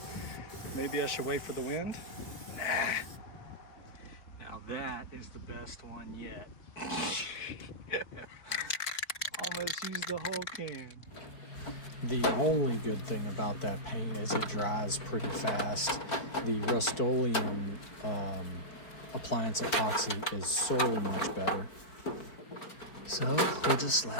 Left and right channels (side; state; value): right; late; 4.6 ms